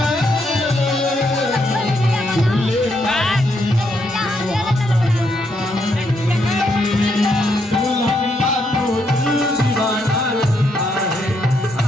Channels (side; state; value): both; normal; correlation 0.76